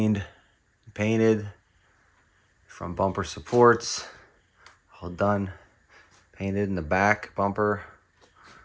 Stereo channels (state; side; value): identical; both; correlation 1.00